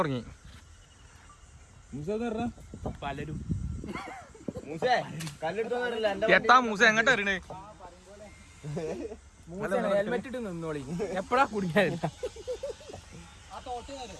പലരും. എത്താ മൂസ എങ്ങോട്ട് വരണേ? ഹെൽമെറ്റ് ഇട്ട് നിന്നോളി, എപ്പഴാ കുടിക്കാനില്ല.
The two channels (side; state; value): both; identical; correlation 1.00